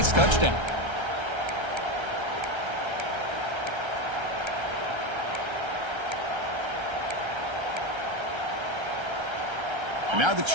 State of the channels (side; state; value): left; late; 1.3 ms